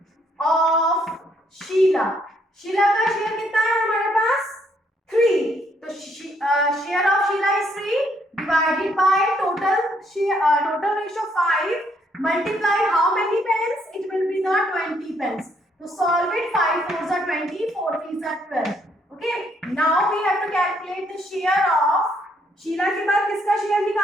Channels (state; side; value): normal; both; correlation 0.70